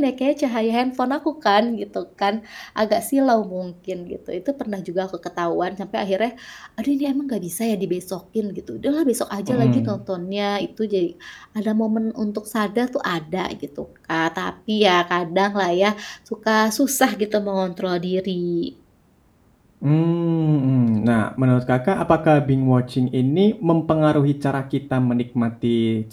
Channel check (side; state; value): both; identical; correlation 1.00